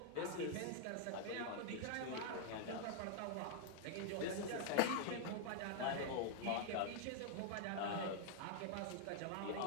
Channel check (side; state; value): both; different; correlation -0.01